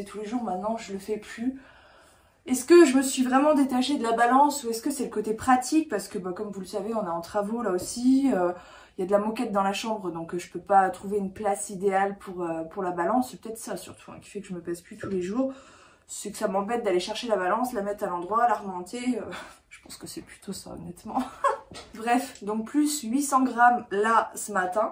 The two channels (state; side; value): identical; both; correlation 1.00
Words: tous les jours. Maintenant, je le fais plus. Est-ce que je me suis vraiment détachée de la balance ou est-ce que c'est le côté pratique? Parce que, bah, comme vous le savez, on est en travaux là aussi. Il y a de la moquette dans la chambre, donc je peux pas trouver une place idéale pour la balance. C'est peut-être ça surtout qui fait que je me pèse plus tous les jours. C'est que ça m'embête d'aller chercher la balance, la mettre à l'endroit, la remonter. Je pense que c'est plutôt ça, honnêtement. Bref, donc plus 800 grammes là ce